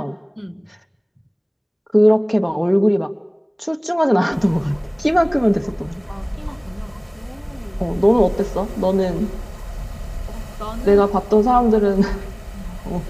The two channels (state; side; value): identical; both; correlation 1.00